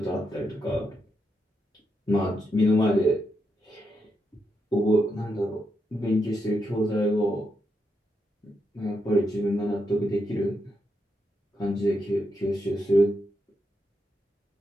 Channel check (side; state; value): both; normal; correlation 0.83